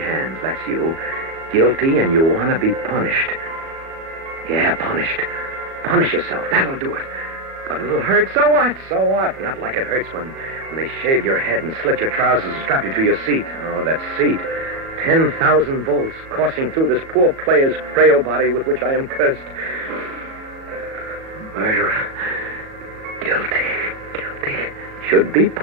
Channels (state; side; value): late; left; 37 ms